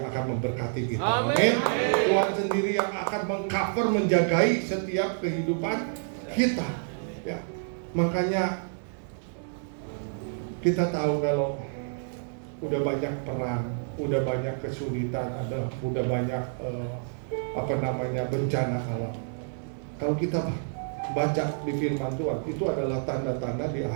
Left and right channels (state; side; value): silent; left; digital silence